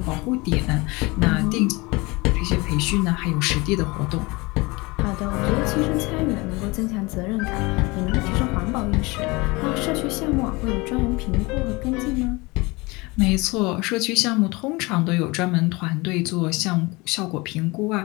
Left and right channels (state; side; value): quieter; right; 24.5 dB